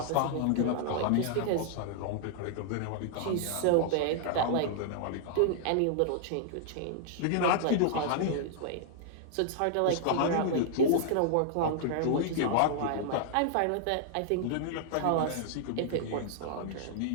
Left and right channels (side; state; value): both; different; correlation -0.01